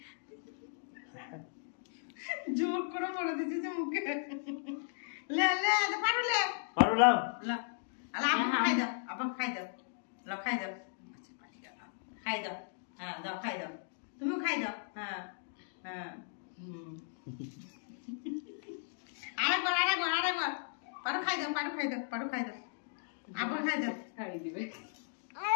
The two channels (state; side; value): silent; right; digital silence